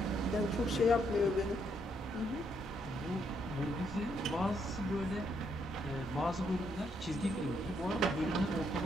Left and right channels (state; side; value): normal; both; correlation 0.74